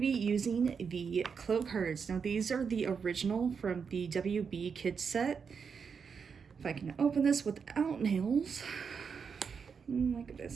be using the Clow cards. Now these are the original from the WB Kids set. If I can open this without nails. Look at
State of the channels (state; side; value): quieter; left; 6.1 dB